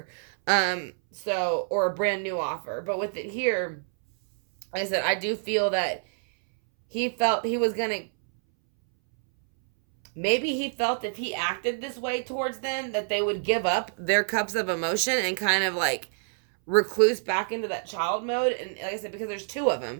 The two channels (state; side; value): silent; left; 60 dB below the other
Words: Or a brand new offer. But with it here, like I said, I do feel that he felt he was going to, maybe he felt if he acted this way towards them that they would give up their cups of emotion and kind of like recluse back into that child mode. And like I said, because there's 2 of